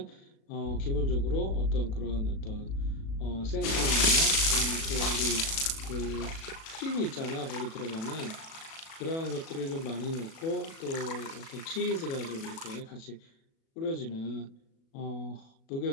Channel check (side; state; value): right; late; 37 ms